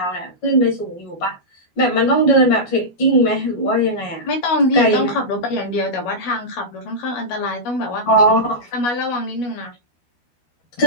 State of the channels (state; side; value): late; right; 12 ms